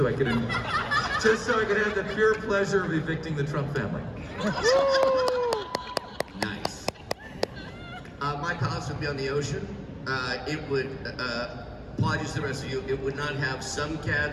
I could have the pure pleasure of evicting the Trump family. Nice. My palace would be on the ocean. It would, apologies to the rest of you, it would not have some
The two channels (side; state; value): both; identical; correlation 1.00